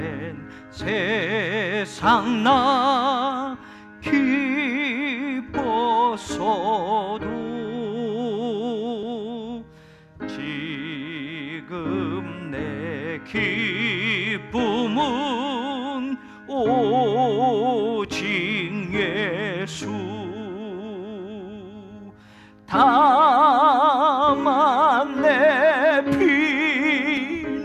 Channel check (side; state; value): both; identical; correlation 1.00